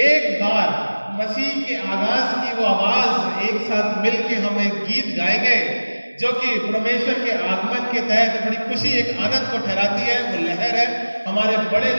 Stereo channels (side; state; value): both; inverted; correlation -1.00